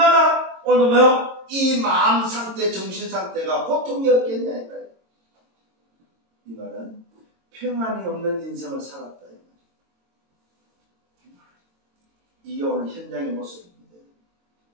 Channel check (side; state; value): left; late; 22 ms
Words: 오늘 뭐요? 이 마음 상태, 정신 상태가 고통이었겠냐 이 말이에요. 이 말은 평안이 없는 인생을 살았다. 이게 오늘 현장의 모습입니다.